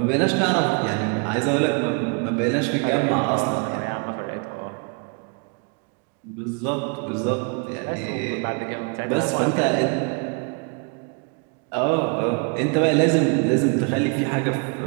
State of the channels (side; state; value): left; quieter; 35.6 dB